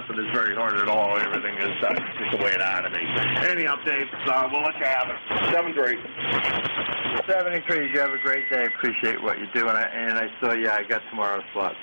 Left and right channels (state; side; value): inverted; both; correlation -1.00